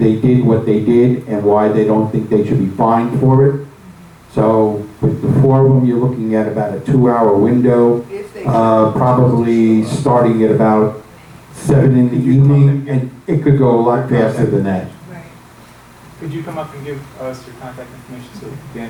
did what they did and why they don't think they should be fined for it. So with the 4 of them, you're looking at about a 2-hour window, probably starting at about 7 in the evening, and it could go a lot faster than that. Could you come up and give us your contact information so Dan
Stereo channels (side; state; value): both; identical; correlation 1.00